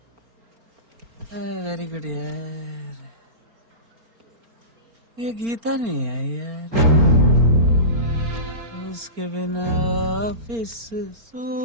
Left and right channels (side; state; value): left; late; 4.4 ms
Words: Very good यार। ये गीता नहीं है यार, उसके बिना ऑफिस